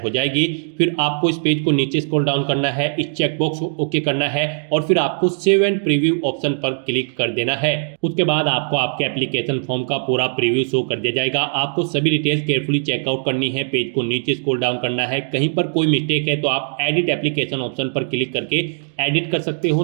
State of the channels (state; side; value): silent; left; digital silence